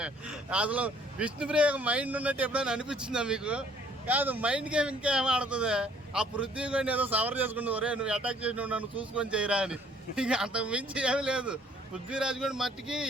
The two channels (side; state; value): both; normal; correlation 0.59